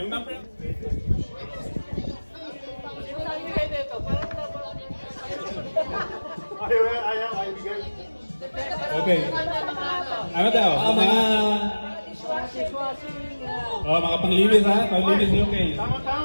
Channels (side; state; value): both; inverted; correlation -1.00